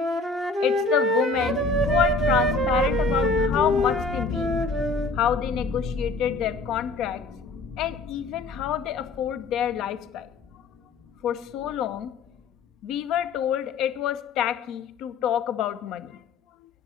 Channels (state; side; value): quieter; right; 3.9 dB